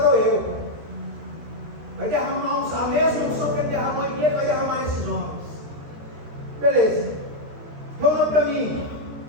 eu. Vai derramar a mesma unção que ele derramou em mim, ele vai derramar nesses homens. Beleza. Reúna para mim.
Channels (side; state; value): left; late; 13 ms